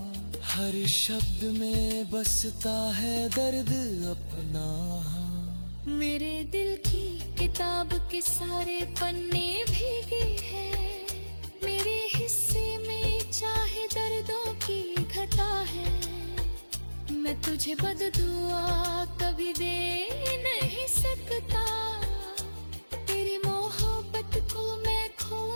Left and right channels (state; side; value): inverted; both; correlation -1.00